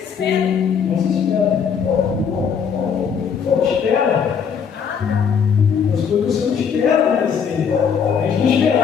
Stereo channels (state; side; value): quieter; right; 6.9 dB